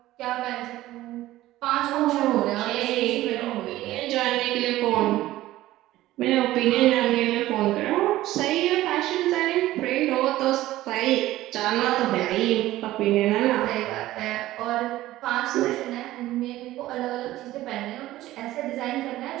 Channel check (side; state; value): left; quieter; 15.7 dB